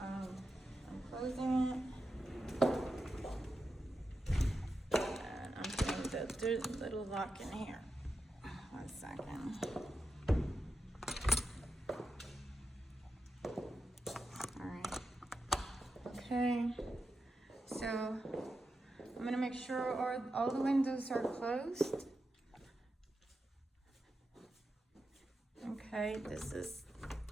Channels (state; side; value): normal; both; correlation 0.89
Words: I'm closing it, and I'm putting the little lock in here. 1 second. All right. Okay. So I'm gonna make sure all the windows are closed. Okay. This is